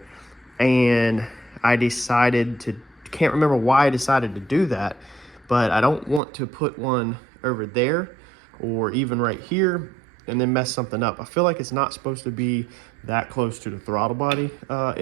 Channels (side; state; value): left; drops out; at 6.2 s